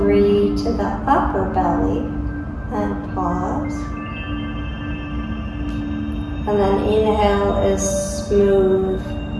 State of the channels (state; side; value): identical; both; correlation 1.00